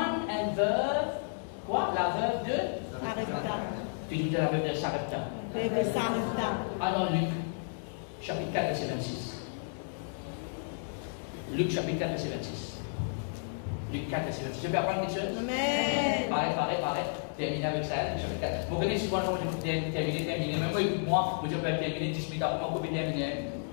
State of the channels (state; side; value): silent; right; digital silence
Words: un veuve. Quoi? La veuve de Sarepta. Tu dis la veuve de Sarepta. Veuve de Sarepta. Alors Luc, chapitre 4, verset 26. Luc, chapitre 4, verset 26. Luc 4, verset 26. Je peux apprendre quelque chose? Amen. Pareil. Terminer avec ça, Luc chapitre 4. Vous connaissez souvent, je vais terminer. Même moi, écoute-moi, je peux terminer 10 minutes après, moi, je peux terminer.